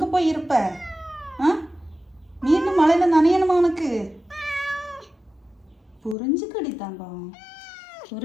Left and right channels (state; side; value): drops out; right; at 6.2 s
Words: போய் இருப்ப? மீண்டும் மழையில நனையணுமா உனக்கு? புரிஞ்சுக்கடி தங்கம்,